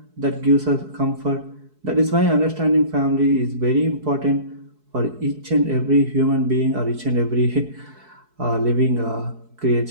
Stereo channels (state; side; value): late; left; 4.7 ms